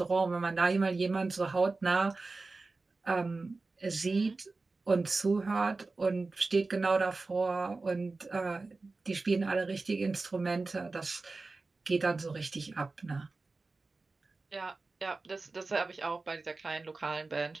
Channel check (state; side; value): quieter; left; 3.7 dB